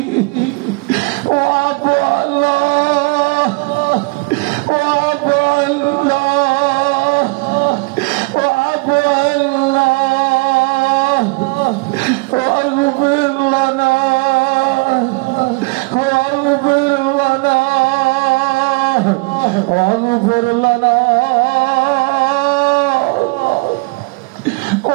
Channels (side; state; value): left; quieter; 27.5 dB